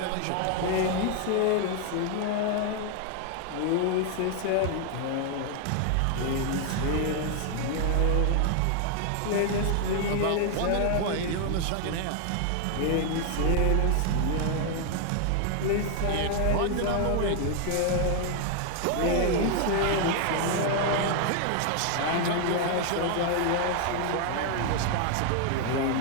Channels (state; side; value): different; both; correlation 0.00